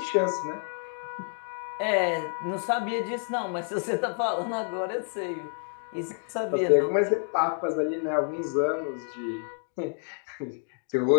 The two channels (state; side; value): silent; right; 58 dB below the other